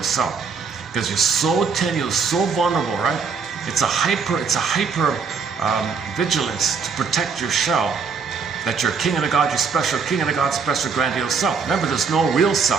self. Because you're so tenuous, so vulnerable, right? It's a hyper vigilance to protect your shell, that you're king of the god, you're special king of the god, special grandiose self. Remember, there's no real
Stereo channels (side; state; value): left; quieter; 5.5 dB